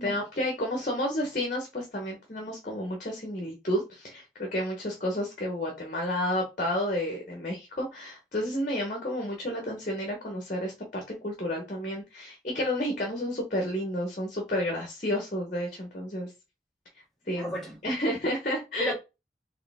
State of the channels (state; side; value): normal; both; correlation 0.40